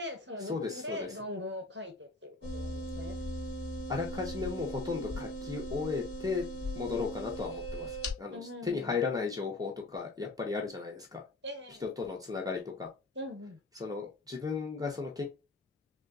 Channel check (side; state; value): right; quieter; 3.2 dB